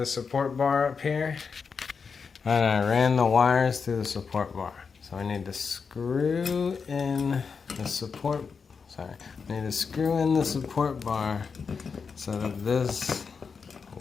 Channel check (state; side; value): quieter; right; 5.6 dB